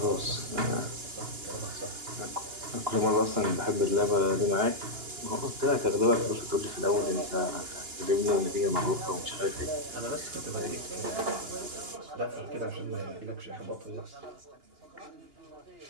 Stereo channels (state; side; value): late; left; 2.9 ms